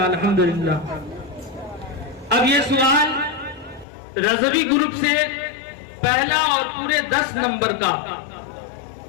अल्हम्दुलिल्लाह। अब ये सवाल रज़वी ग्रुप से पहला और पूरे 10 नंबर का।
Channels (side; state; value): right; drops out; at 3.9 s